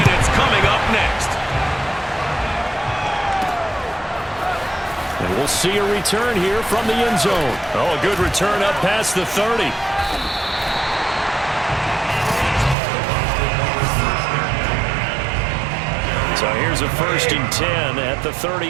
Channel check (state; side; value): drops out; left; at 12.8 s